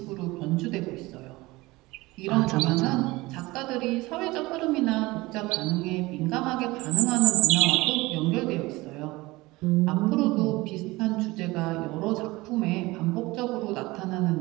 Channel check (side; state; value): left; quieter; 21.0 dB